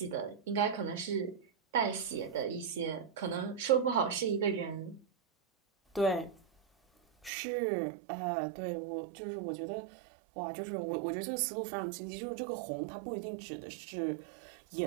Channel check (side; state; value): left; drops out; at 7.3 s